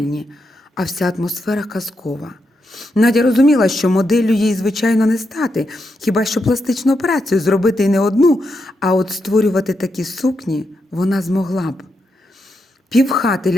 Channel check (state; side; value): normal; both; correlation 0.84